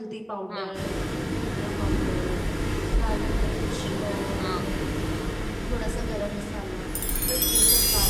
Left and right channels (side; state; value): both; identical; correlation 1.00